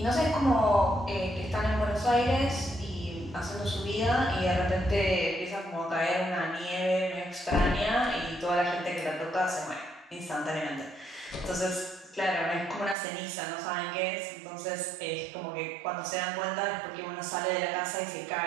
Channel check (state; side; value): drops out; left; at 13.0 s